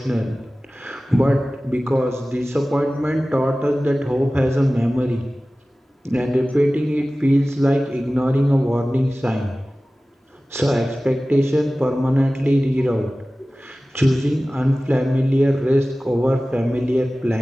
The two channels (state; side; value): normal; both; correlation 0.97